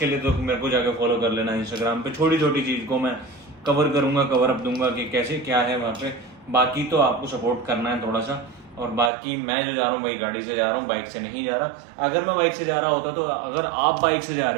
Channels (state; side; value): drops out; left; at 9.1 s